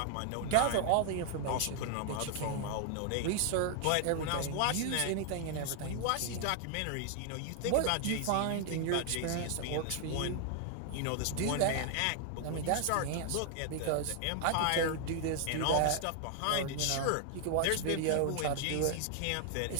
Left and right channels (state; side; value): different; both; correlation 0.00